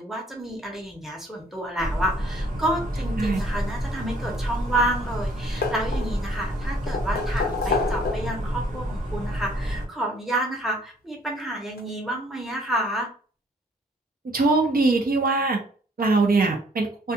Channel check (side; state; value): both; normal; correlation 0.61